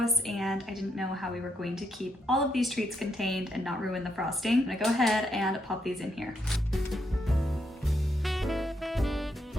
and I didn't know how we were going to keep all of these treats contained and not ruin the frosting. I'm gonna go ahead and pop these in here.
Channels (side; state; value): both; normal; correlation 0.78